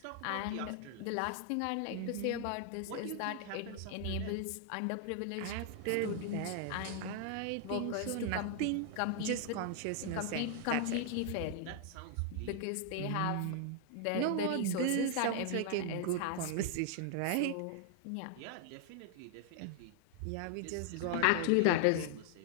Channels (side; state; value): both; different; correlation 0.00